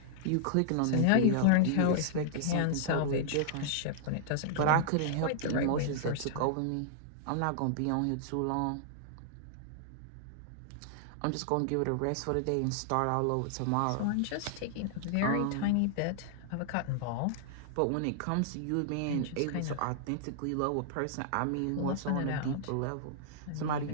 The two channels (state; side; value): different; both; correlation -0.01